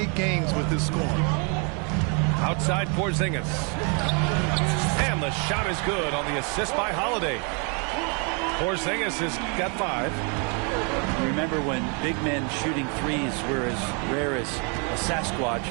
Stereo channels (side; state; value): left; quieter; 36.0 dB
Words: games with his scoring. Outside Porzingis. And the shot is good on the assist by Holiday. Porzingis has got 5. Remember when big men shooting threes were as rare as a Sasquatch,